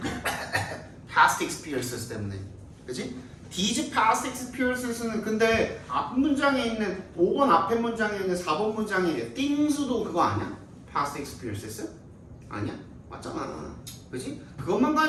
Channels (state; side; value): identical; both; correlation 1.00